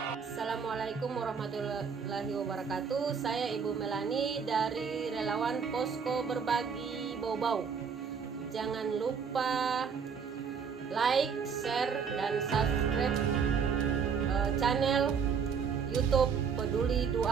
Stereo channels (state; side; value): quieter; left; 6.3 dB